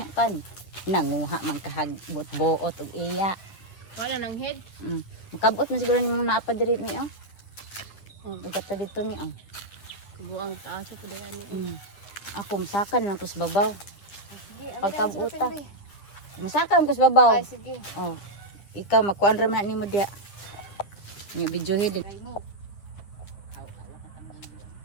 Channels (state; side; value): late; right; 10 ms